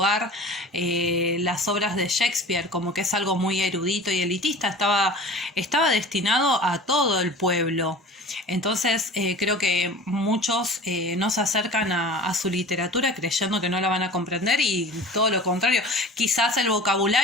las obras de Shakespeare, como que es algo muy erudito y elitista. Estaba destinado a todo el pueblo. Entonces creo que muchos no se acercan a su literatura creyendo que no la van a comprender, y todo lo contrario. Quizás el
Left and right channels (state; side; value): normal; both; correlation 0.40